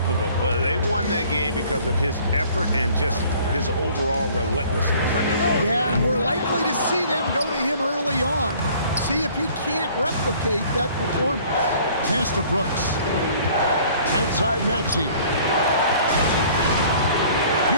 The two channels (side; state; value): both; inverted; correlation -0.54